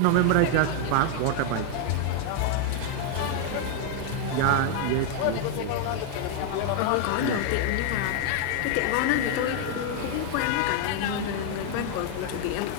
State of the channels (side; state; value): both; different; correlation 0.00